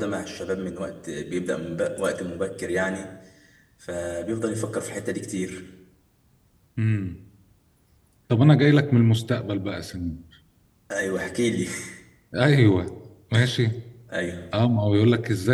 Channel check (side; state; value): both; identical; correlation 1.00